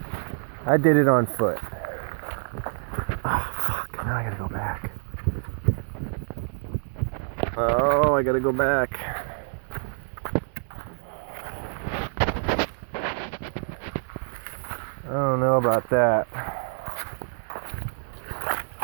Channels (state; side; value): silent; left; digital silence